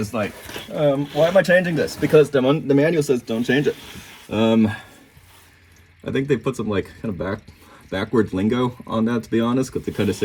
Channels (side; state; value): both; identical; correlation 1.00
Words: why am I changing this? Because the manual says don't change it. I think they put some kind of backwards lingo on that, to be honest, because they kind of